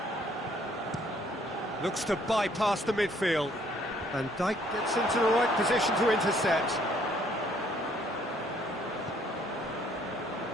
looks to bypass the midfield, and Dijk gets into the right position to intercept.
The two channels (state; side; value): normal; both; correlation 0.64